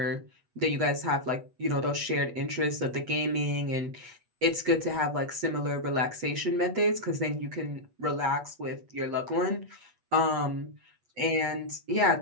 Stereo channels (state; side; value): late; left; 8.3 ms